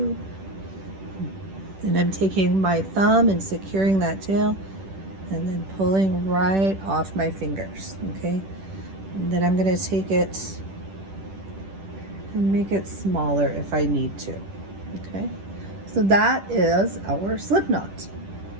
And I'm taking my thumb and securing that tail and then pulling right off my fingers, okay? And then I'm going to take it and make it smaller if I need to, okay? So that is our slip knot.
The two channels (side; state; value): left; late; 10 ms